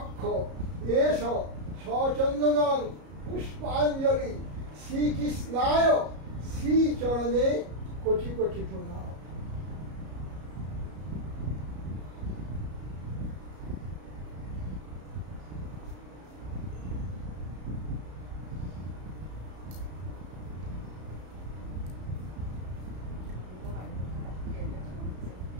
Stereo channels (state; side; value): late; left; 33 ms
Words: এষ সচন্দনং পুষ্পাঞ্জলি শ্রীকৃষ্ণায় শ্রীচরণে কোটি কোটি প্রণাম।